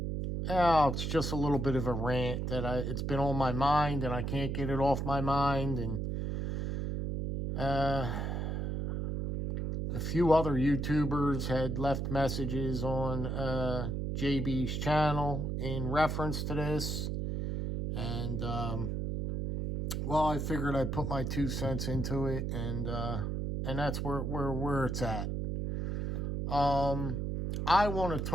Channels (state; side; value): noise; right; hum, 2 dB below the sound